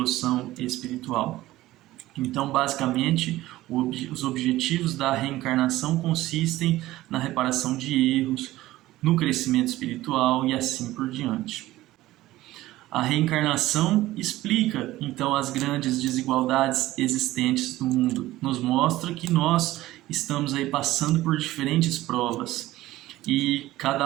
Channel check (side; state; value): left; quieter; 16.4 dB